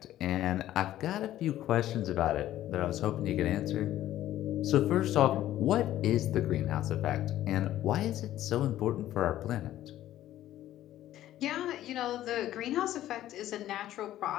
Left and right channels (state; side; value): quieter; right; 13.3 dB